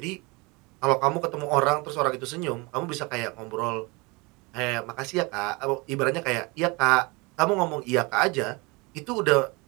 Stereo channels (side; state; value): left; quieter; 26.8 dB